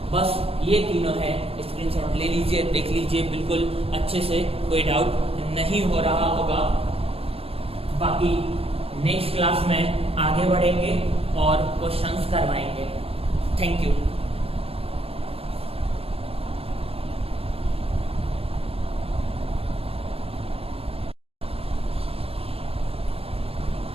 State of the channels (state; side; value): late; left; 0.28 ms